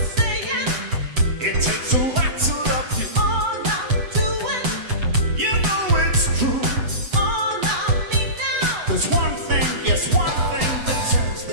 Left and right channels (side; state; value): left; late; 8.2 ms